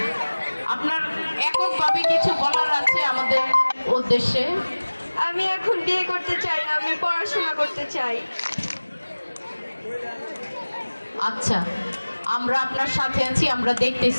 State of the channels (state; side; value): inverted; both; correlation -1.00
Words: আপনার এককভাবে কিছু বলার আছে আমাদের উদ্দেশ্যে? আমি এখন বিয়ে করতে চাই না, আমি পড়াশোনা করতে চাই। আচ্ছা, আমরা আপনার সাথে আছি, আমরা